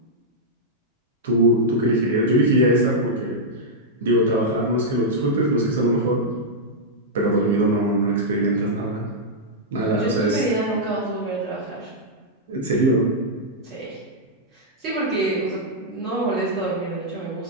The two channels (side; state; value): both; normal; correlation -0.07